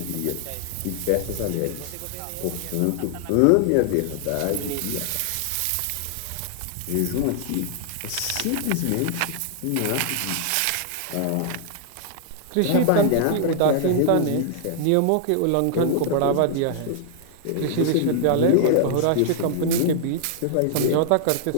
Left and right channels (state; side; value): different; both; correlation -0.01